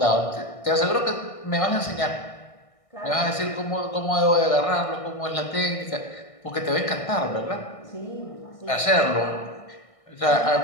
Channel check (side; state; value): right; late; 1.6 ms